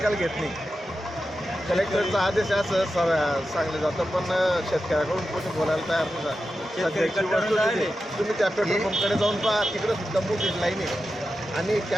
घेत नाही। कलेक्टरचा आदेश असं सांगलं जातं, पण शेतकऱ्याकडून कोणी बोलायला तयार नाही। सध्याची वस्तू तुम्ही त्या पेट्रोल पंपकडे जाऊन पहा, तिकडे सुद्धा मोठी लाईन आहे आणि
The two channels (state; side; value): normal; both; correlation 0.91